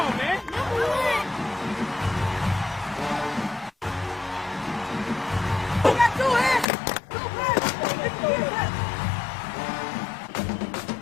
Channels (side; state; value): right; drops out; at 6.7 s